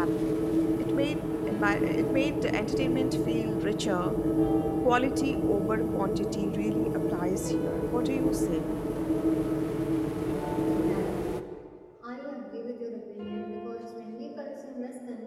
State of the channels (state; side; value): identical; both; correlation 1.00